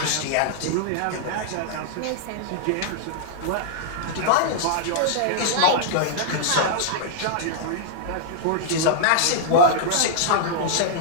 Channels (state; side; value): different; both; correlation -0.01